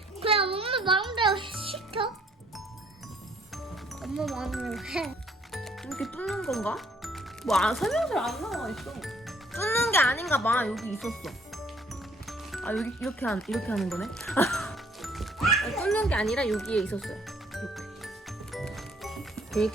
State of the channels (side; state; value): both; normal; correlation 0.62